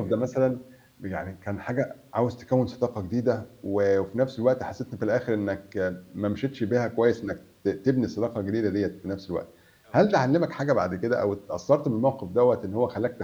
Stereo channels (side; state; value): both; identical; correlation 1.00